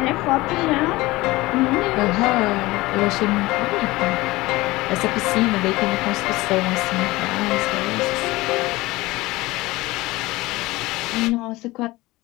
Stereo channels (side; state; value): right; quieter; 20.0 dB